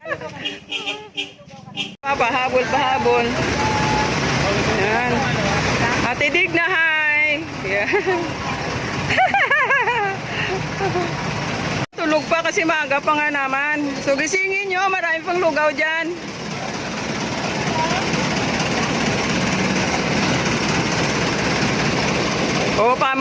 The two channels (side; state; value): both; identical; correlation 1.00